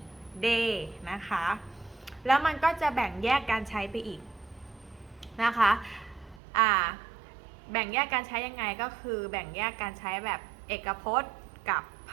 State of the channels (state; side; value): drops out; left; at 6.4 s